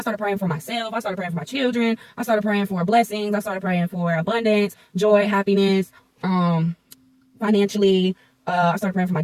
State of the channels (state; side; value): identical; both; correlation 1.00